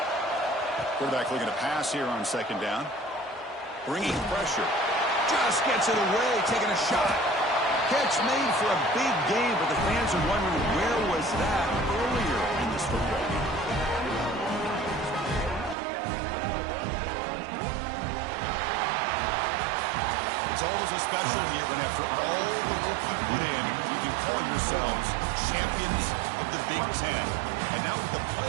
Quarterback looking to pass here on 2nd down. Bringing pressure. Just gets it away, taking a shot. Catch made for a big game, but the fans are wondering where was that earlier in this football game. It's always a special year when after all the work you put in, you can call yourselves champions of the Big Ten. And now with the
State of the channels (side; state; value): left; drops out; at 15.8 s